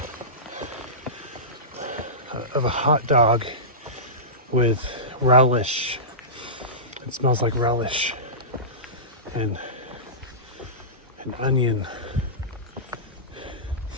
hot dog with relish. It smells like relish and an onion.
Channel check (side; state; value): both; normal; correlation -0.20